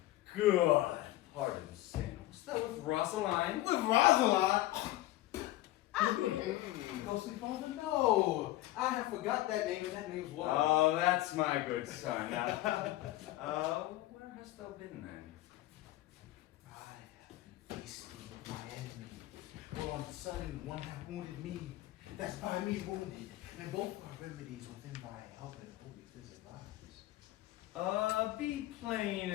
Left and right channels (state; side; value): quieter; right; 16.4 dB